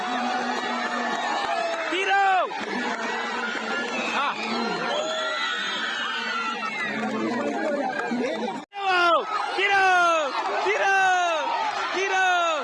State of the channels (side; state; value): both; identical; correlation 1.00